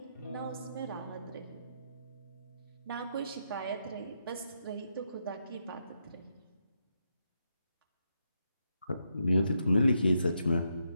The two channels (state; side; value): inverted; both; correlation -0.81